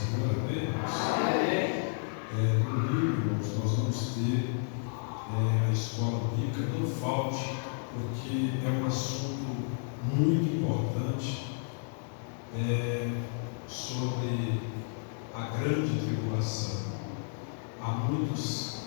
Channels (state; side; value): silent; right; digital silence